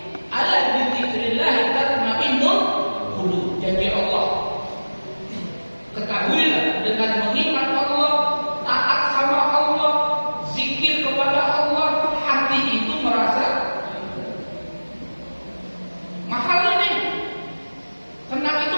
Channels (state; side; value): inverted; both; correlation -1.00